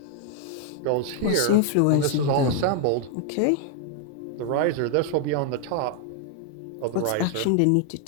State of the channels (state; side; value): different; both; correlation 0.00